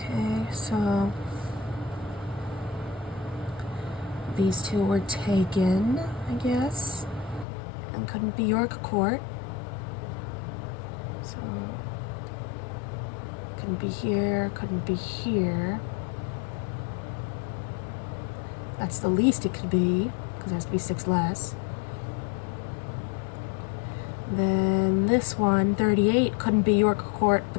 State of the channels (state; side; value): drops out; right; at 7.5 s